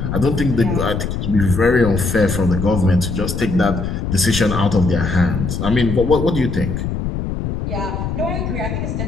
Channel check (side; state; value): left; noise; rumble, 3 dB below the sound